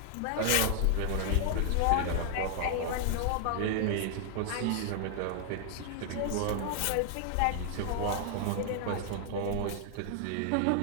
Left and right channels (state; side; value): different; both; correlation 0.00